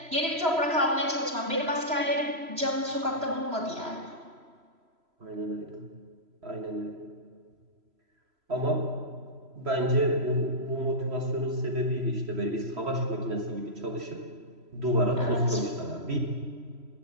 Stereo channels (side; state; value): left; late; 3.0 ms